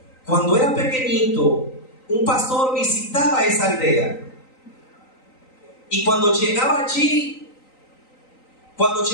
cuando era pequeñito, un pastor visitaba esa aldea. Y cuando llegaba allí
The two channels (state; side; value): late; right; 3.9 ms